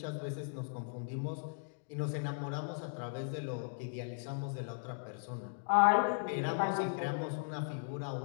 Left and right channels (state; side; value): silent; right; digital silence